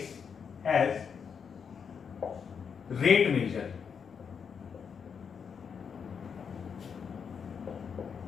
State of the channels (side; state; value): right; quieter; 6.6 dB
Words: as rate measure.